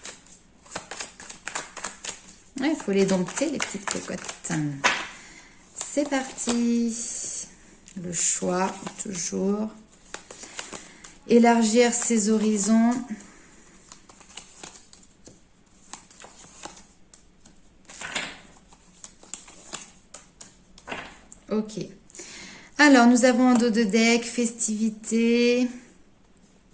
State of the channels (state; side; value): identical; both; correlation 1.00